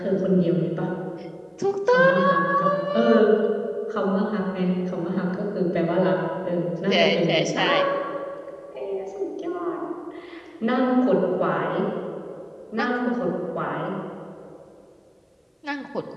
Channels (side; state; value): both; identical; correlation 1.00